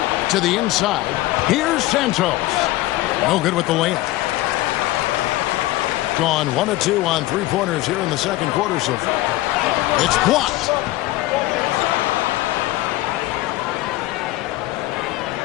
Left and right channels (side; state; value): right; quieter; 17.4 dB